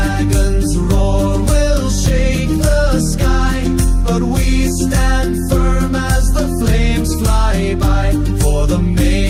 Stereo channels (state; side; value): identical; both; correlation 1.00